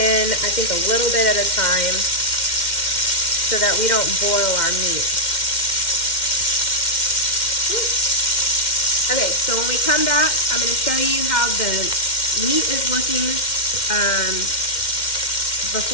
I think a little bit at a time, so that we don't boil our meat. Okay, so when we come back, I'm going to show you how the meat is looking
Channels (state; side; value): late; right; 2.1 ms